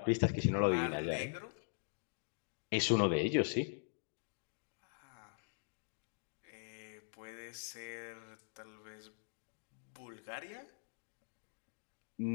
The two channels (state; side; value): silent; right; digital silence